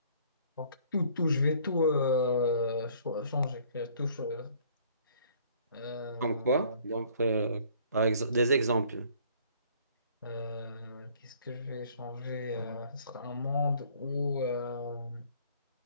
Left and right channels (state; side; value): inverted; both; correlation -0.58